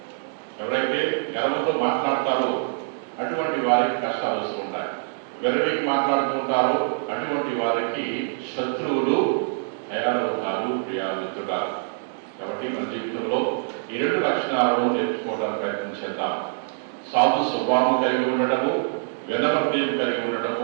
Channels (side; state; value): left; silent; digital silence